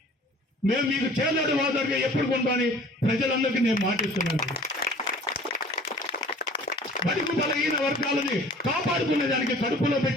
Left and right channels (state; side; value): normal; both; correlation 0.48